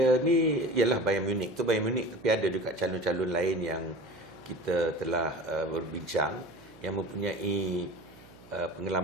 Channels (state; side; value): noise; right; hum, 23 dB below the sound